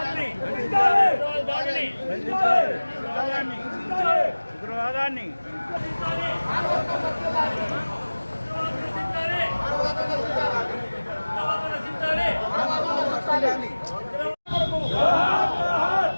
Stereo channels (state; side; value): inverted; both; correlation -1.00